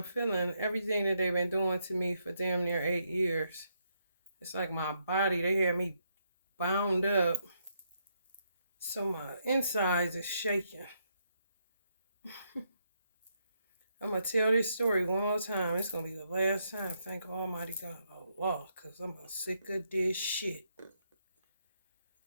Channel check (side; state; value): both; inverted; correlation -0.77